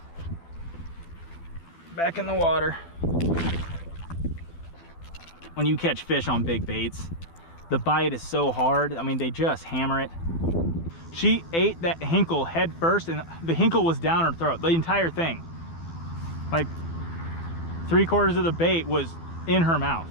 Back in the water. When you catch fish on big baits, the bite is so hard. I mean, they just hammer it. She ate that hinkle head first, and the hinkle was down her throat, the entire thing. Like 3/4 of the bait was in her mouth.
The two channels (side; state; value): right; late; 12 ms